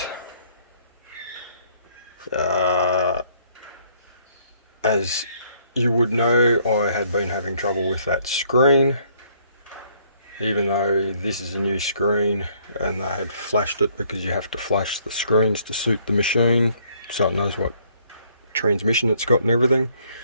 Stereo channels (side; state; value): both; inverted; correlation -0.65